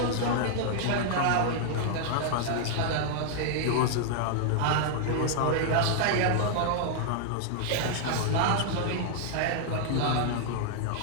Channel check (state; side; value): different; both; correlation -0.01